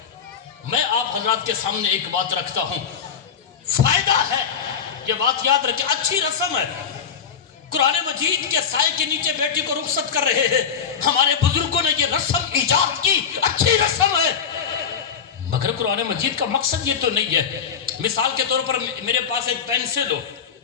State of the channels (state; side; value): quieter; right; 7.1 dB